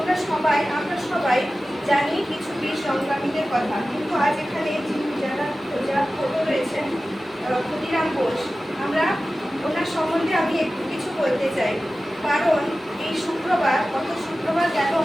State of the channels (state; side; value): normal; both; correlation 0.95